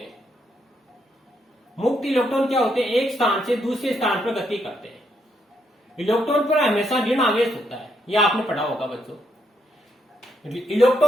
मुक्त इलेक्ट्रॉन क्या होते हैं? एक स्थान से दूसरे स्थान पर गति करते हैं। इलेक्ट्रॉन पर हमेशा ऋण आवेश होता है, यह आपने पढ़ा होगा बच्चों।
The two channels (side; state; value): both; normal; correlation 0.76